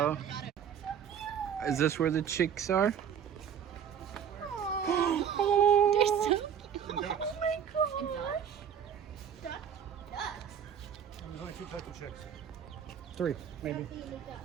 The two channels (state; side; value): quieter; left; 8.4 dB